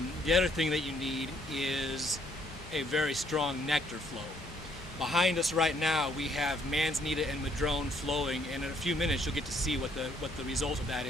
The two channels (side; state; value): both; normal; correlation 0.68